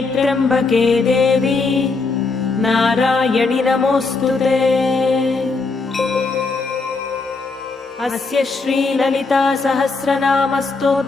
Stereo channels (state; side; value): quieter; right; 4.0 dB